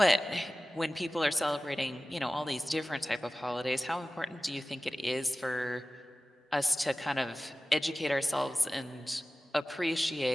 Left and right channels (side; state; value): both; normal; correlation 0.96